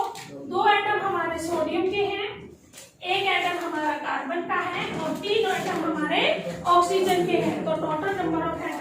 2 एटम हमारे सोडियम के हैं, 1 एटम हमारा कार्बन का है, और 3 एटम हमारे ऑक्सीजन के हैं, तो टोटल नंबर ऑफ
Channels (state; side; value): identical; both; correlation 1.00